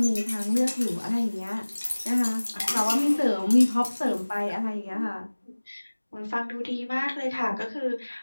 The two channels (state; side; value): inverted; both; correlation -1.00